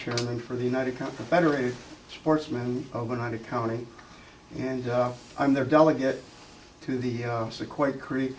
for the Federated Sportsmen of Oneida County, and I'm their delegate to the Sequoia Creek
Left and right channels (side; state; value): both; identical; correlation 1.00